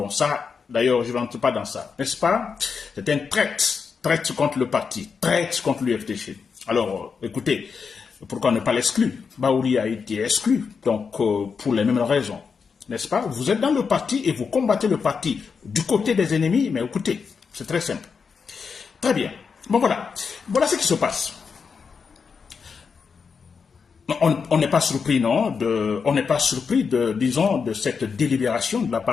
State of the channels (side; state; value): right; quieter; 5.7 dB